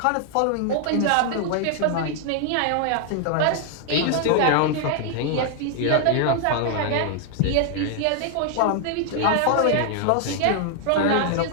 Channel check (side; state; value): both; different; correlation 0.00